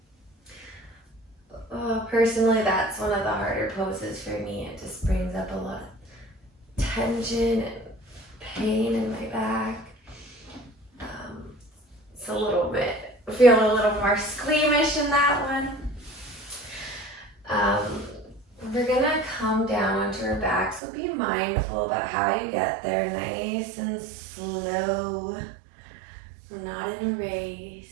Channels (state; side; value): drops out; left; at 20.8 s